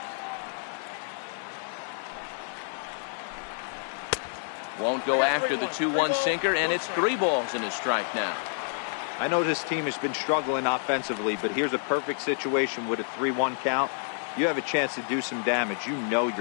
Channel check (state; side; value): silent; right; 59 dB below the other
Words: Won't go after the 2-1 sinker, and it's 3 balls and a strike now. I know this team has been struggling offensively, but here's a perfect situation with a 3-1 count. You have a chance to do some damage. You know